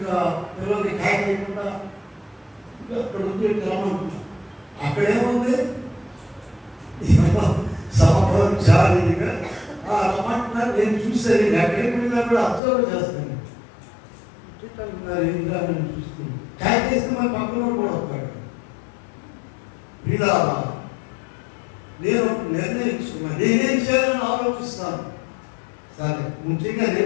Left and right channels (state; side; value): drops out; right; at 12.6 s